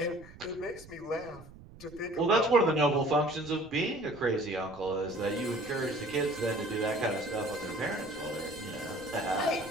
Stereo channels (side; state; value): right; noise; rumble, 20 dB below the sound